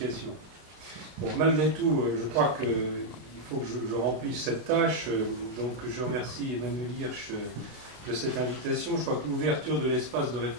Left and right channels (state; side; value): late; left; 33 ms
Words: Bon, malgré tout, je crois qu'il faut que je remplisse cette tâche, donc je remercie Emmanuel Hirsch de cette invitation. Je crois que l'ouverture de l'espace de